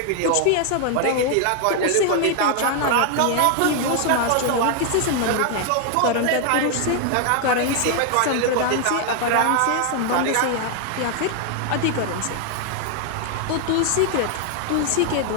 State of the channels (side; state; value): both; different; correlation 0.00